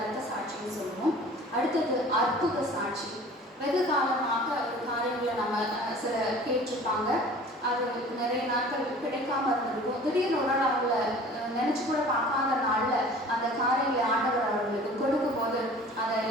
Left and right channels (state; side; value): normal; both; correlation 0.45